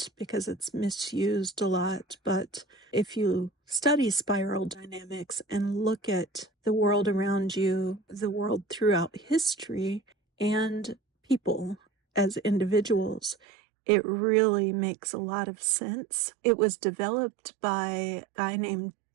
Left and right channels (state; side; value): drops out; left; at 13.4 s